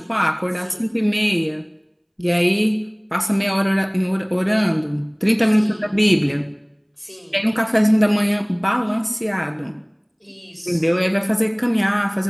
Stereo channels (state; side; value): identical; both; correlation 1.00